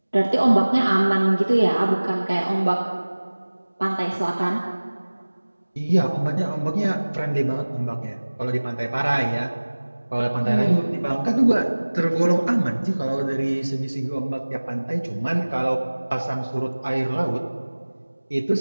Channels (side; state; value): both; inverted; correlation -1.00